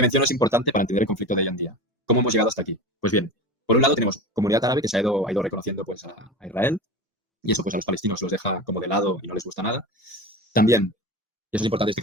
menciono es importante para entender el conflicto de hoy en día. ¿Cómo hemos llegado hasta aquí? Pues bien, por un lado tenemos comunidad árabe que se ha ido reconociendo pues a Israel, y eso pues a los palestinos los deja como de lado y no les gusta nada. También, y eso es importante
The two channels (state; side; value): normal; both; correlation 0.29